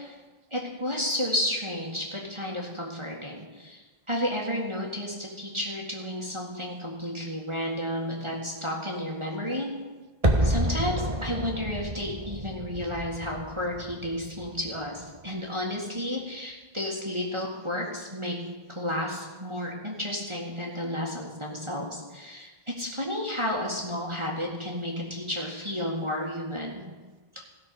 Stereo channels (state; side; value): late; left; 1.4 ms